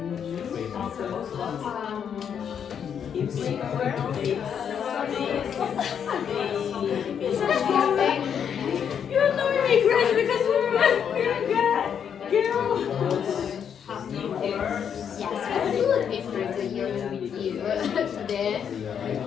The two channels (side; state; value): right; quieter; 8.0 dB